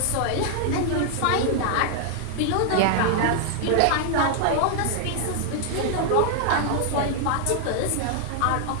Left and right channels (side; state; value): both; different; correlation 0.00